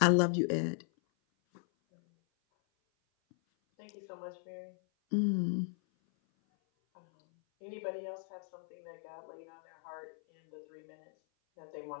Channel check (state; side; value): silent; right; 53 dB below the other